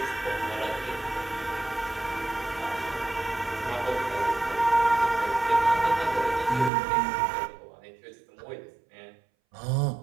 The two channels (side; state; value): left; drops out; at 6.7 s